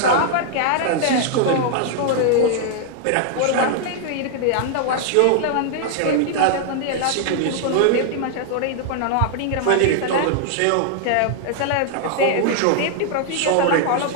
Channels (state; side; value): different; both; correlation -0.01